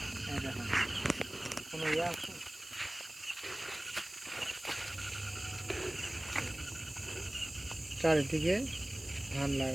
এই দেখো। কোনো ইয়ে আছে? চারিদিকে ধান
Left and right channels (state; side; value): noise; right; hiss, 17 dB below the sound